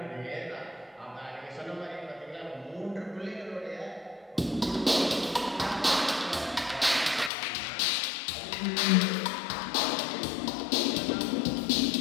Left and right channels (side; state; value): right; drops out; at 7.3 s